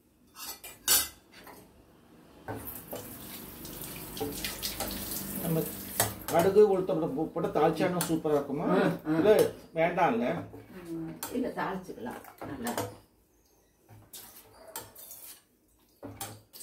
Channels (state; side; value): identical; both; correlation 1.00